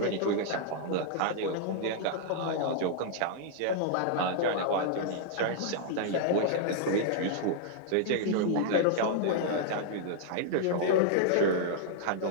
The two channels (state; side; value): different; both; correlation -0.01